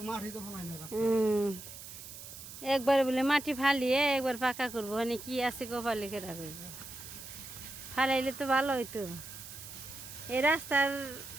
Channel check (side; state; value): right; noise; hiss, 13 dB below the sound